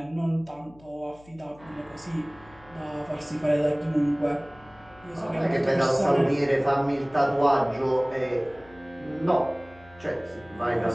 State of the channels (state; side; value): noise; left; hum, 25 dB below the sound